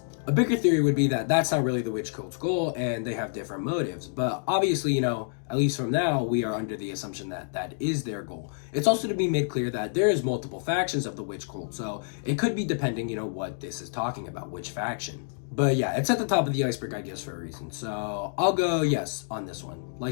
A bigger theory would be that that's not really the witch cult's goal and they have different motives, but obviously, at least from now, we are under the assumption that that is their goal. It's also to be made clear that there is multiple factions of the witch cult, so it could be depending, what this is talking about, which faction. But yeah, it's at the top of the iceberg, I guess, for a reason. So I'll go yes on this one.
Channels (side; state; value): right; silent; digital silence